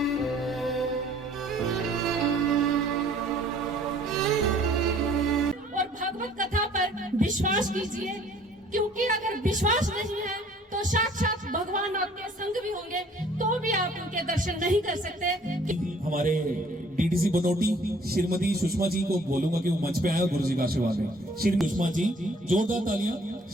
और भागवत कथा पर विश्वास कीजिए, क्योंकि अगर विश्वास नहीं है तो साक्षात भगवान आपके संग भी होंगे तो भी आप उनके दर्शन नहीं कर सकते। हमारे डीडीसी बनोटी श्रीमती सुषमा जी को बोलूंगा कि वो मंच पे आए, गुरु जी का आशीर्वाद है। श्री सुषमा जी, जोरदार तालियां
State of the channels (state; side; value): normal; both; correlation 0.56